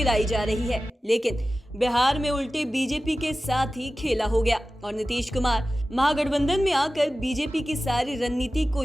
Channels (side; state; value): both; normal; correlation 0.95